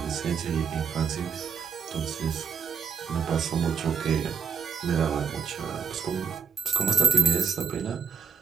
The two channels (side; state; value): left; quieter; 6.3 dB